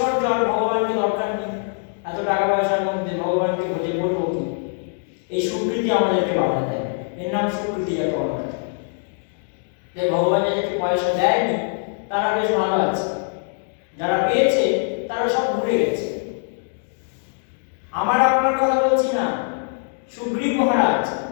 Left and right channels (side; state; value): right; silent; 62 dB below the other